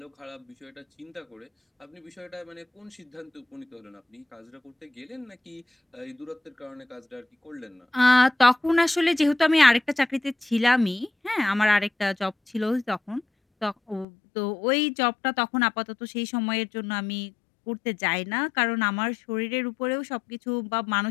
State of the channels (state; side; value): drops out; right; at 14.1 s